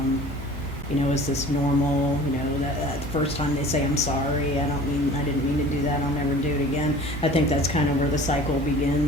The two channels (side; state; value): both; normal; correlation 0.44